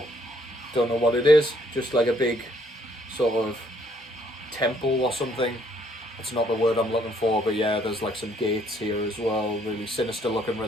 Don't know what it is, just like a big sort of temple or something. It's not the word I'm looking for, but yeah, there's like some gates here as well. Really sinister looking,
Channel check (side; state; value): both; normal; correlation 0.67